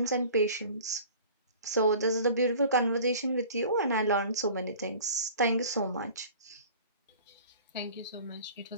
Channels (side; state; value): both; inverted; correlation -0.44